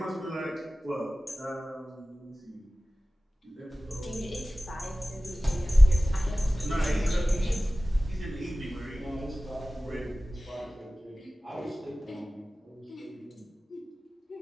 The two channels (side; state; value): both; normal; correlation 0.97